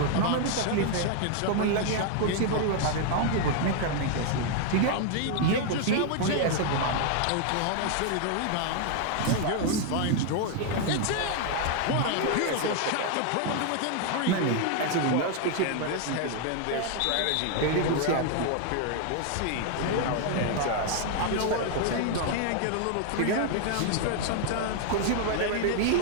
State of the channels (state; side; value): different; both; correlation 0.00